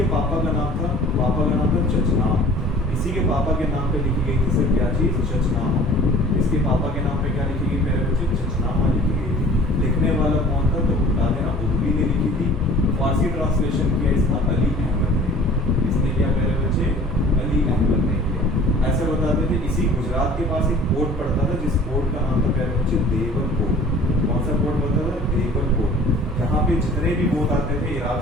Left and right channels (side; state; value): both; normal; correlation 0.47